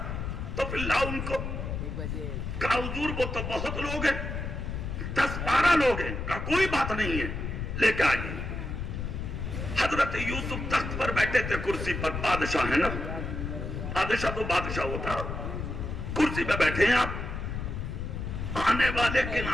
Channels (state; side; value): noise; left; rumble, 4 dB below the sound